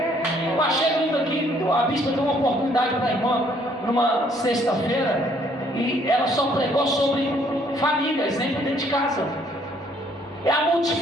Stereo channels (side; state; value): both; normal; correlation 0.64